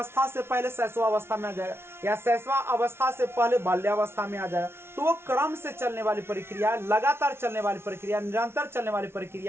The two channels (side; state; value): left; late; 0.12 ms